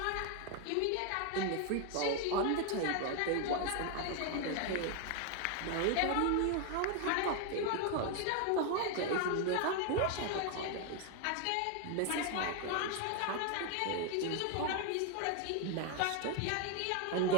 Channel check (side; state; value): both; different; correlation 0.01